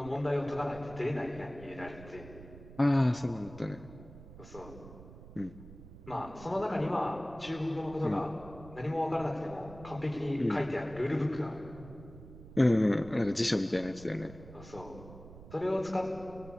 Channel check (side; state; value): right; noise; rumble, 16 dB below the sound